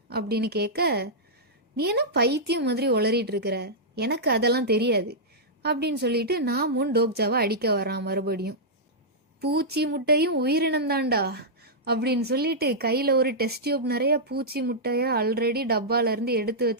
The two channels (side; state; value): both; normal; correlation -0.11